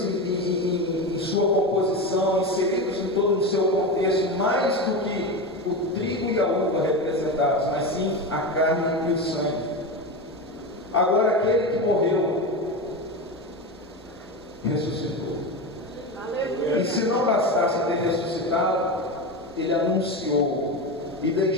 em sua composição, inseridos em todo o seu contexto, mais do que o trigo e a uva representados, mas sim a carne e o sangue. Agora, aquele que morreu ressuscitou. E se não bastasse ter ressuscitado, ele anunciou e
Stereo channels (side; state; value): both; normal; correlation 0.20